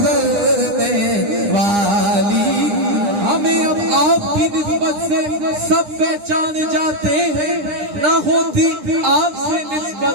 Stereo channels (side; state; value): left; late; 9.9 ms